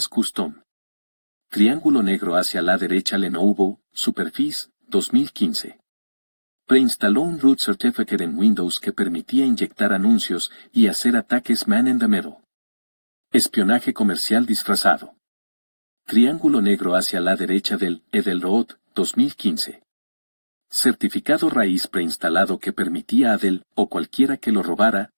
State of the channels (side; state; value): both; inverted; correlation -1.00